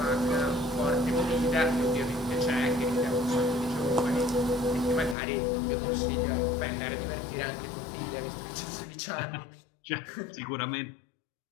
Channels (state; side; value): drops out; right; at 5.2 s